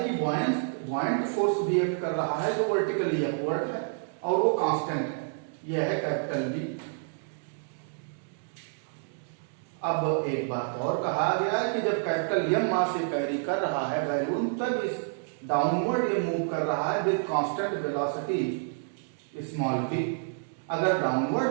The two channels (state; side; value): silent; left; digital silence